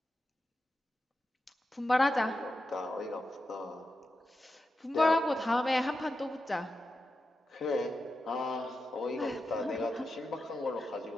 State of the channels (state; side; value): normal; both; correlation 0.89